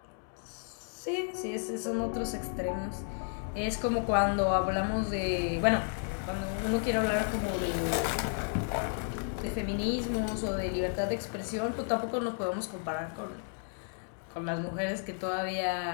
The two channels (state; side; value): silent; right; 56 dB below the other